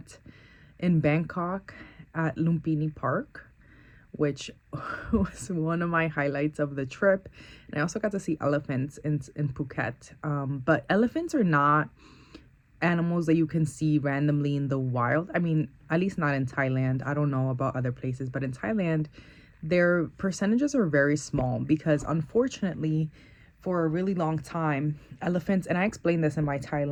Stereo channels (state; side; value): identical; both; correlation 1.00